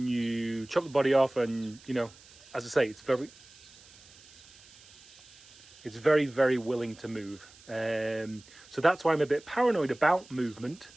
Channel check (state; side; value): noise; right; hiss, 23 dB below the sound